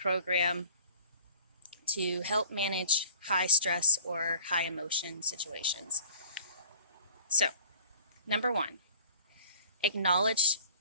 to help manage high stress or high emotion situations. So, number 1, acknowledge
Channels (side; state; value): both; inverted; correlation -0.46